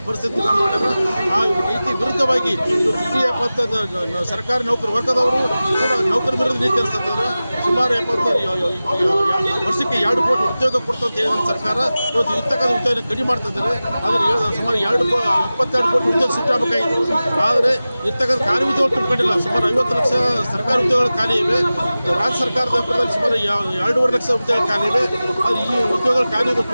ಪರಿಸ್ಥಿತಿ ಮಾಡಿದ್ರೆ ಆ ನೀತಿ ವಿರುದ್ಧವಾಗಿ ಇಡೀ ಸರ್ಕಾರಿ ನೌಕರ ವರ್ಗದವರು ಕೂಡ ನೌಕರ ವಿರುದ್ಧ ನೀತಿ ಅನಿಸ್ತದ. ಸುಮಾರು 70 ವರ್ಷಕ್ಕೆ 2 ಕೋಟಿ ಉದ್ಯೋಗ ಕೊಡ್ತಂತ ಹೇಳಿದ ಸರ್ಕಾರ ಇವತ್ತು ಇರ್ತಕ್ಕಂಥ ಉದ್ಯೋಗ ಕಡಿಮೆ ಮಾಡ್ತಿದ್ದಾರೆ. ಆದರೆ ಸುಮಾರು 22 ಕೋಟಿ ಉದ್ಯೋಗ ಸೃಷ್ಟಿಸಬೇಕಾಗಿತ್ತು. ಆದರೆ ಇರ್ತಕ್ಕಂಥ ಖಾಲಿ ಉದ್ಯೋಗ ತುಂಬಿಕೊಂಡಿಲ್ಲ. ಸುಮಾರು 50 ಲಕ್ಷ ಸರ್ಕಾರಿ ಉದ್ಯೋಗಗಳು ಖಾಲಿ ಇವೆ. ರಾಜ್ಯ ಸರ್ಕಾರದ ವ್ಯಾಪ್ತಿಯಲ್ಲಿ ಸುಮಾರು 2.5 ಲಕ್ಷ ಉದ್ಯೋಗ ಖಾಲಿ ಇವೆ. ಅದು ಈ ಉದ್ಯೋಗಗಳು ಖಾಲಿ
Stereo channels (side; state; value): both; inverted; correlation -0.96